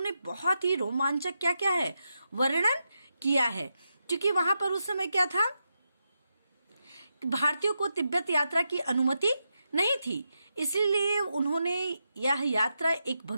बहुत ही रोमांचक क्या है वर्णन किया है। क्योंकि वहां पर उस समय क्या था, भारतीयों को तिब्बत यात्रा की अनुमति नहीं थी, इसीलिए उन्होंने यह यात्रा एक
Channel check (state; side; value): inverted; both; correlation -0.86